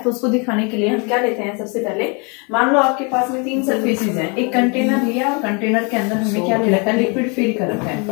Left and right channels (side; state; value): right; quieter; 32.5 dB